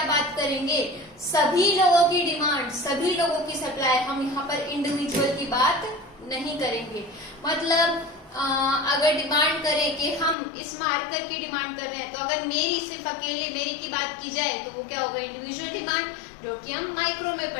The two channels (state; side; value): drops out; right; at 10.4 s